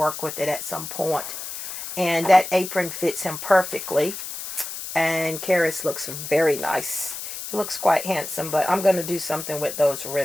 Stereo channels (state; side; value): noise; left; hiss, 8 dB below the sound